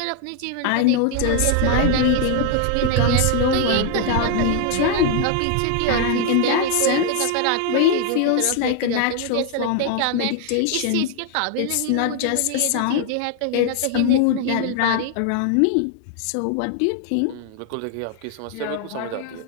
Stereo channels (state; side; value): different; both; correlation 0.00